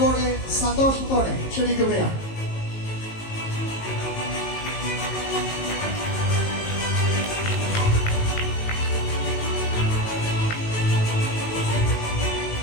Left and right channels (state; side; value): late; right; 19 ms